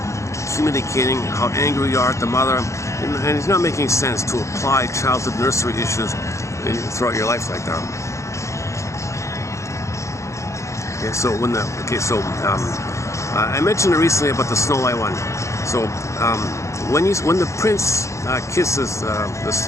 communicating how angry you are at the mother, and it's not making sense to apply childhood nursery issues throughout your life like that. Okay, so I mentioned recently about the Snow White one. So when the prince kisses the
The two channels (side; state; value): right; late; 0.14 ms